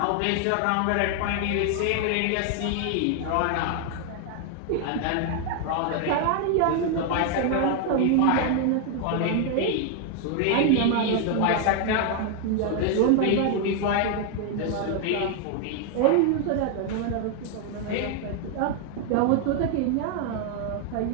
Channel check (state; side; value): different; both; correlation 0.00